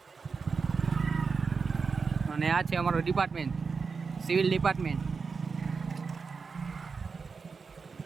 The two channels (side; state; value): left; quieter; 5.0 dB